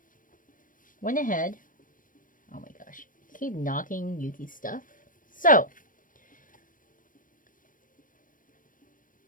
went ahead. Oh my gosh. I keep knocking Yuki's stuff. So,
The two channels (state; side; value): late; right; 0.39 ms